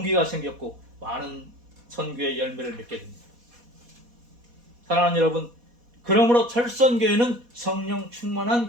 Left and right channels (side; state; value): left; late; 4.2 ms